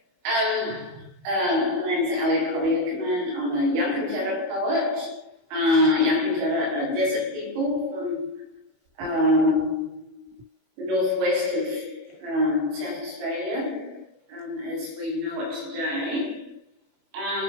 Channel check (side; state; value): left; late; 21 ms